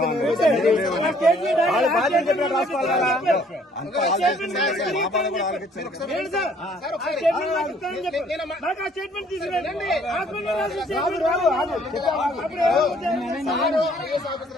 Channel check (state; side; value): normal; both; correlation 0.61